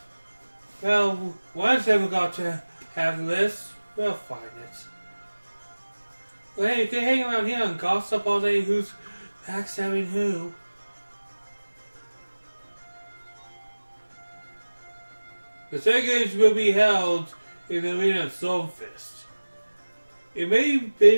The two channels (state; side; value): inverted; both; correlation -1.00